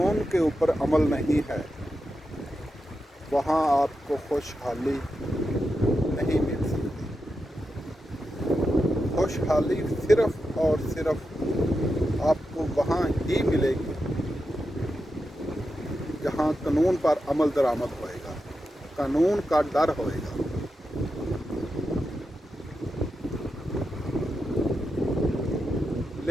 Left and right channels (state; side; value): normal; both; correlation 0.88